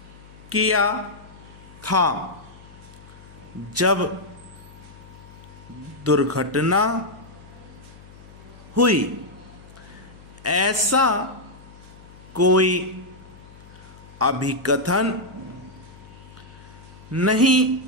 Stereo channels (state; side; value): noise; left; hum, 21 dB below the sound